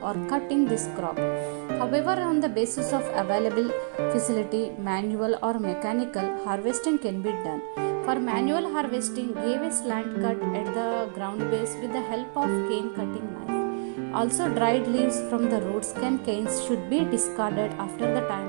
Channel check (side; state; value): left; silent; digital silence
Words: or cutting this crop. However, on the basis of available facility, manual or mechanical, harvesting can be done. For manual harvesting, give a slant cut at the ground base with the help of cane cutting knife. Also, dried leaves from the roots and canes should be discarded after the